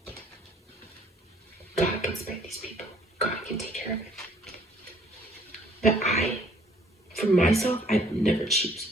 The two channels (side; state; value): both; normal; correlation 0.60